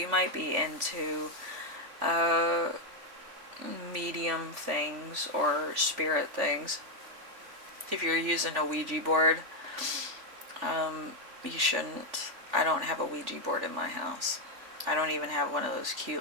might be into medium things or spirit things. If you're using a Ouija board, you shouldn't. I don't have a Ouija board in my house. I don't even have one of those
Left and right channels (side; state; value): left; late; 3.5 ms